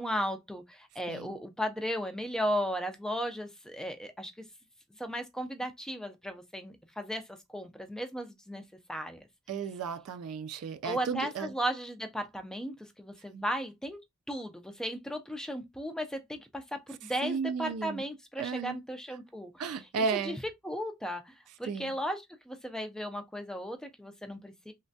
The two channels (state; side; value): normal; both; correlation 0.63